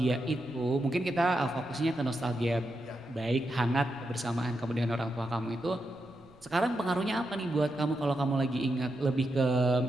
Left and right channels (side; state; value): right; noise; rumble, 28 dB below the sound